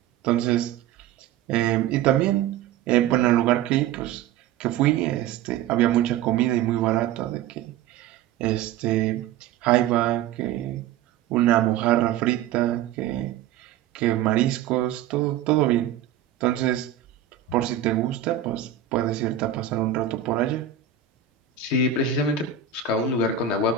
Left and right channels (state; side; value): quieter; left; 9.7 dB